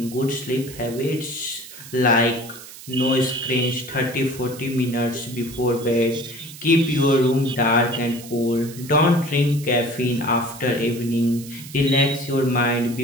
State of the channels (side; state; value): right; noise; hiss, 16 dB below the sound